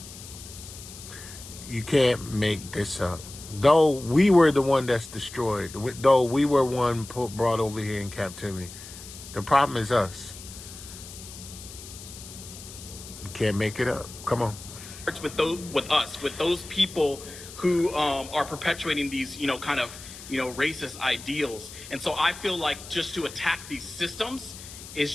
You can't make this up. Though we were the one that's destroyed, though we were one brought over here in captivity, the problem is us. You can't make it up. Come on. with those people who are perpetuating these, kind of, racist ideals. And so I feel like just to attack these systems is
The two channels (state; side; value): noise; left; hiss, 15 dB below the sound